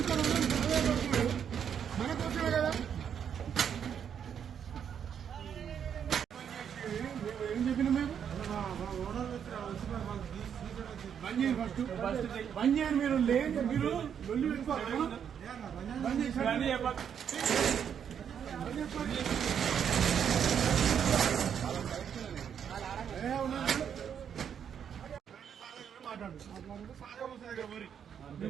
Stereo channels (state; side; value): quieter; left; 8.2 dB